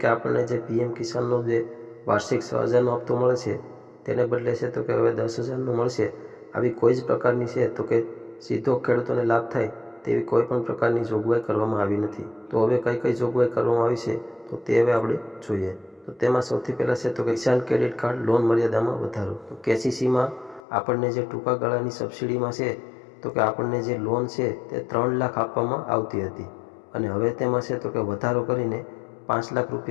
આપણને જે PM કિસાનનો જે વાર્ષિક 6,000નો હપ્તો મળે છે તેને બદલે છે તો કે હવે 10,000નો મળશે। આવી કોઈ જ પ્રકારની છે તો કે સીધો ખેડૂતોને લાભ થાય તેવી કોઈ પણ પ્રકારની જોગવાઈ કરવામાં આવી નથી। તો હવે કઈ કઈ જોગવાઈ કરવામાં આવી છે તો તે હવે આપણે જોઈએ। તો તેમાં સૌથી પહેલાં છે તો કે કિસાન ક્રેડિટ કાર્ડ લોન મર્યાદામાં વધારો। તો KCCમાં આપણને જે ટૂંકા ગાળાની સબસિડીમાં છે તો કે આપણને જે લોન છે તે 3 લાખ આપવામાં આવતી હતી અને હવે તેમાં છે તો કે વધારો કરીને 5 લાખ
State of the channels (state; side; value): drops out; right; at 20.6 s